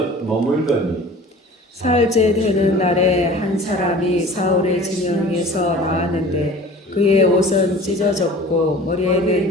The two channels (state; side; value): normal; both; correlation 0.43